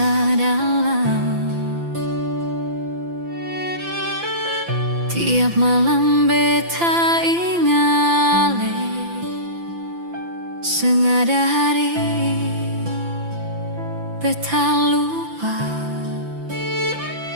dalam. Tiap malam beta ingale, sengada hari beta lupa.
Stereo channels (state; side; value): late; left; 5.9 ms